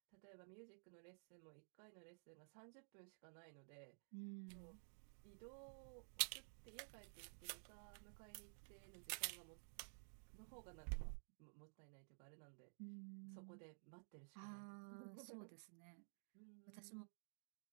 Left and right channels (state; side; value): silent; left; digital silence